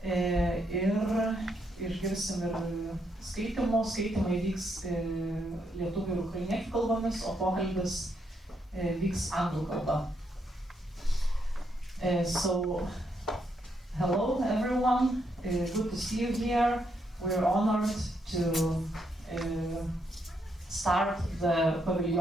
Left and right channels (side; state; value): both; normal; correlation 0.77